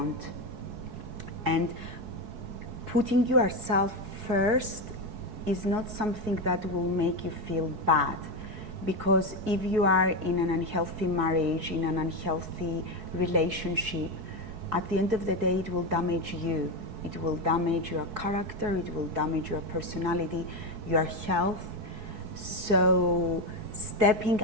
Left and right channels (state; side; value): late; left; 4.7 ms